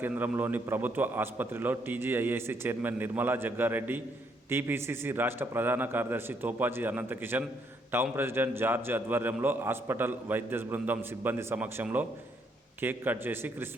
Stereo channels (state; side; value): normal; both; correlation 0.72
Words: కేంద్రంలోని ప్రభుత్వ ఆసుపత్రిలో TGIAC chairman Nirmala Jaggareddy, TPCC రాష్ట్ర ప్రధాన కార్యదర్శి Topaji Anantkishan, town president George ఆధ్వర్యంలో హాస్పిటల్ వైద్య బృందం సిబ్బంది సమక్షంలో కేక్ కట్ చేసి